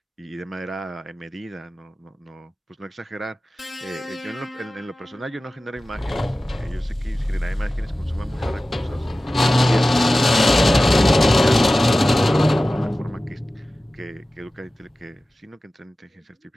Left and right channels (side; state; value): both; normal; correlation 0.96